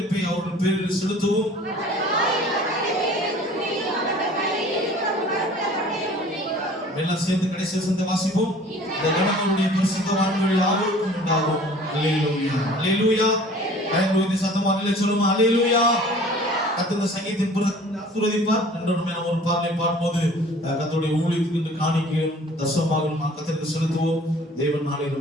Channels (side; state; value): both; normal; correlation 0.48